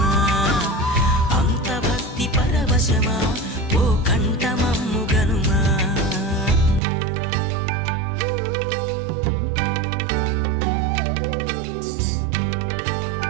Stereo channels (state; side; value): drops out; left; at 6.8 s